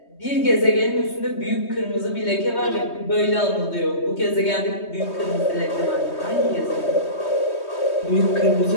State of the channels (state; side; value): late; right; 3.2 ms